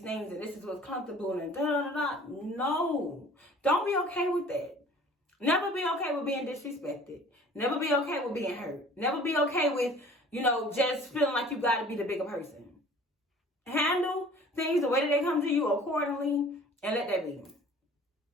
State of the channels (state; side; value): normal; both; correlation 0.49